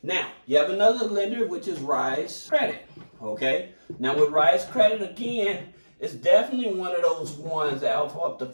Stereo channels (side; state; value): both; inverted; correlation -1.00